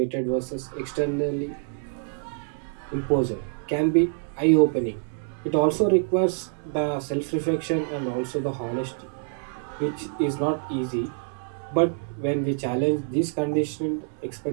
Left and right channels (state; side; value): silent; left; 61 dB below the other